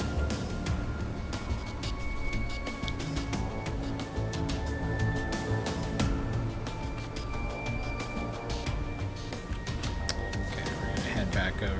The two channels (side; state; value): both; identical; correlation 1.00